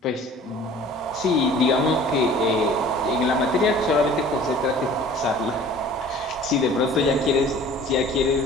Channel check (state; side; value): normal; both; correlation 0.47